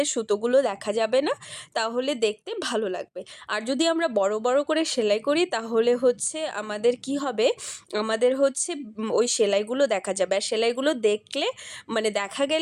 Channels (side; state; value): both; identical; correlation 1.00